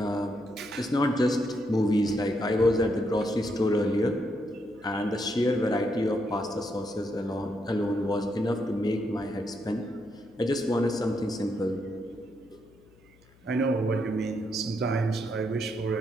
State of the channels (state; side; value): noise; left; hum, 29 dB below the sound